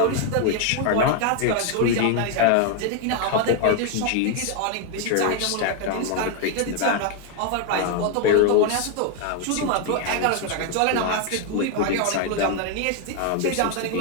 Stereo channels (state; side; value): different; both; correlation 0.01